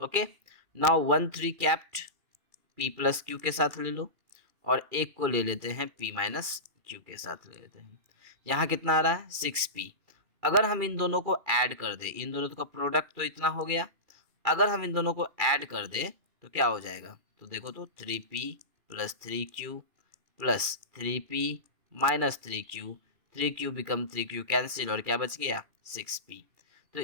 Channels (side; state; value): left; late; 2.4 ms